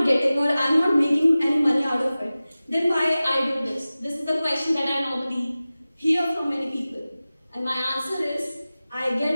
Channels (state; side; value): inverted; both; correlation -0.97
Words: getting or I'm not making any money out of it. Then why I do this? This is the question that I normally hear from many people. And my answer is, I